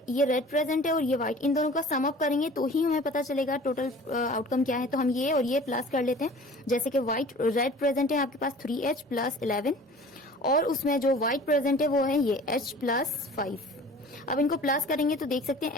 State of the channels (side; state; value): both; normal; correlation 0.45